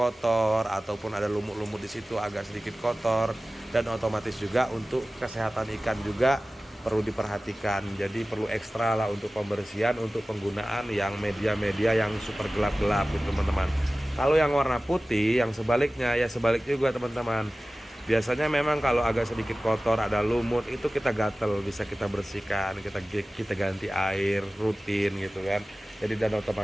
ataupun ada lumut-lumut di situ agak sedikit kotor, dan otomatis juga untuk kesehatan ikan juga perlu diperhatikan. Jadi perlu ekstra lah untuk pembersihan, untuk penggunaan yang media-media yang super gelap-gelap gitu teman-teman. Kalau yang warna putih, yang sebaliknya ya sebaliknya juga teman-teman. Biasanya memang kalau agak sedikit kotor, ada lumut, itu kita gatel, bisa kita bersihkan, kita ganti air rutin gitu kan. Jadi dan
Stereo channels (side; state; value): both; normal; correlation 0.97